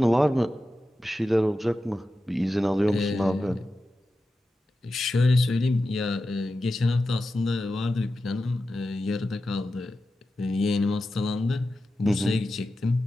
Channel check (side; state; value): both; normal; correlation 0.92